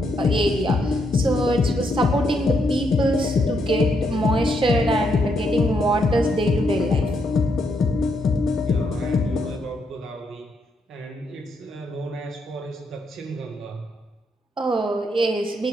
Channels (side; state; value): both; normal; correlation 0.77